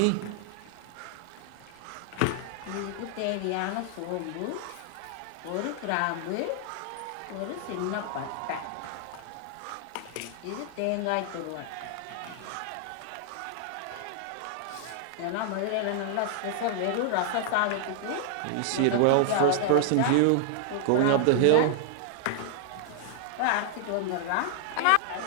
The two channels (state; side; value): different; both; correlation 0.00